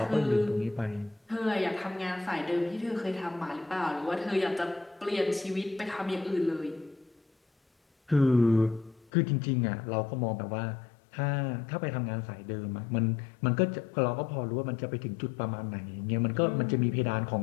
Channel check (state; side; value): drops out; right; at 9.1 s